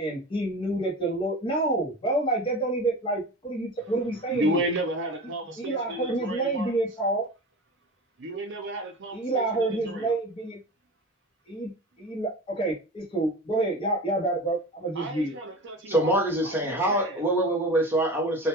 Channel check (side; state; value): both; normal; correlation 0.32